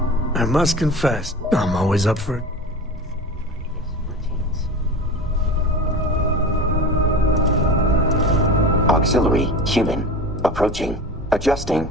I must confess, I'm always up for it. Auxiliary human approaching. Adjusting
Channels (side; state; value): both; normal; correlation 0.32